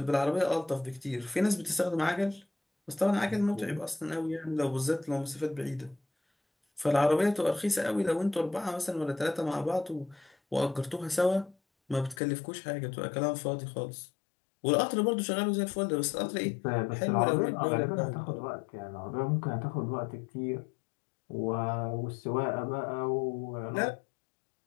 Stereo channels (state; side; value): drops out; right; at 12.2 s